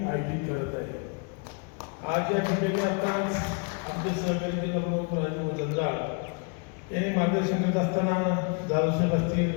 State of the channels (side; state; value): right; quieter; 35.0 dB